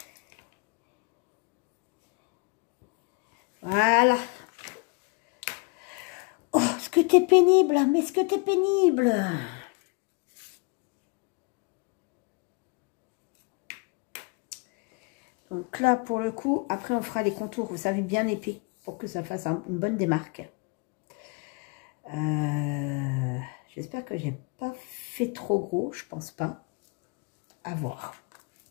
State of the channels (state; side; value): quieter; right; 30.6 dB